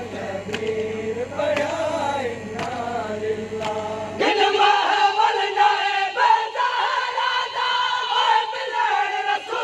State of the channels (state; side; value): identical; both; correlation 1.00